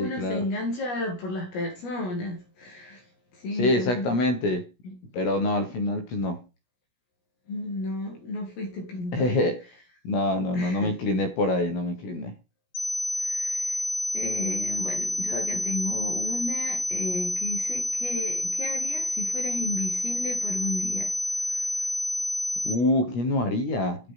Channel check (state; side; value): late; right; 17 ms